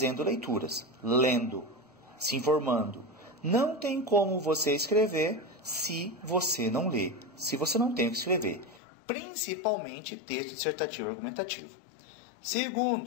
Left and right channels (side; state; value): right; drops out; at 8.8 s